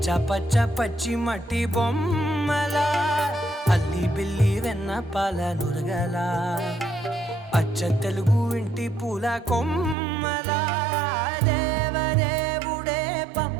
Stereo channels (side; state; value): left; drops out; at 10.0 s